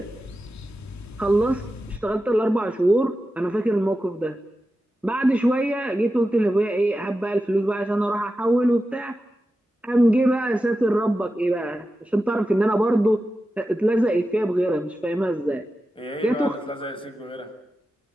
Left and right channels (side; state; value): both; normal; correlation 0.92